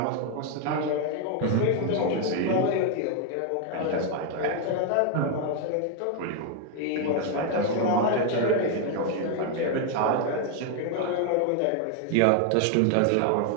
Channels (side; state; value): both; different; correlation 0.00